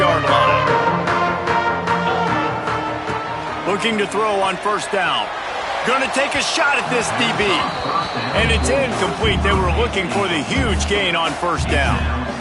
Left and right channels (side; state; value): both; identical; correlation 1.00